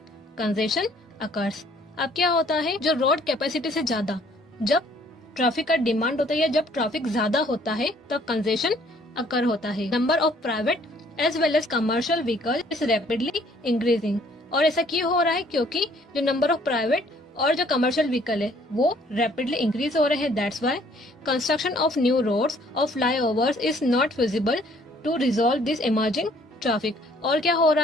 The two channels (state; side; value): normal; both; correlation 0.61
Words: congestion occurs। अब क्या होता है, जो रोड कैपेसिटी से ज्यादा जब ट्रैफिक का डिमांड होता है या जब ट्रैफिक ज्यादा होता है तब कंजेशन अकर होता है। Number of private as well as commercial vehicle is rapidly increasing. और ऐसा क्यों हो रहा है, क्योंकि जो नंबर ऑफ प्राइवेट और जो कमर्शियल व्हीकल है वो रैपिडली इंक्रीज हो रहे हैं। That's why construction of new roads और flyovers is not feasible to resolve this emerging traffic. और क्या हो